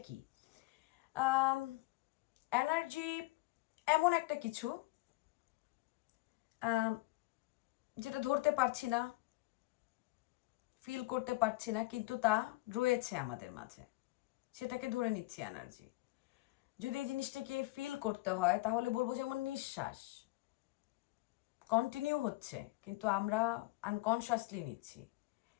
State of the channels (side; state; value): right; quieter; 21.3 dB